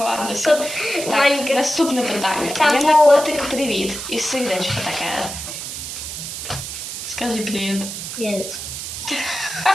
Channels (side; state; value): right; noise; hiss, 7 dB below the sound